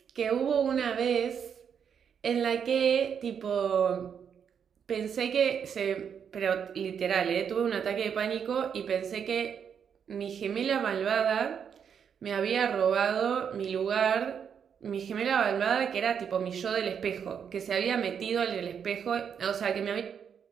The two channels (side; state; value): left; quieter; 7.5 dB